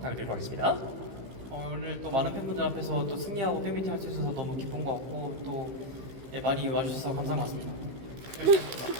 드리도록 하겠습니다. 오늘 또 많은 팬분들 앞에서 또 승리하고 팬미팅 할 수 있어서 너무 기쁜 것 같고 또 많이 와주셔서 감사한 것 같습니다.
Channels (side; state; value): left; late; 15 ms